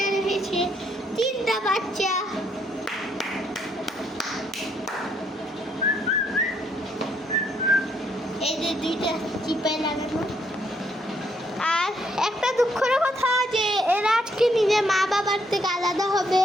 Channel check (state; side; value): normal; both; correlation 0.72